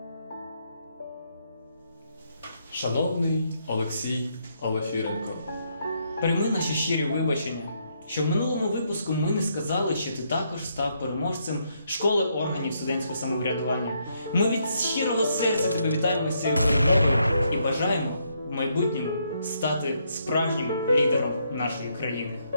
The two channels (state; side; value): inverted; both; correlation -0.75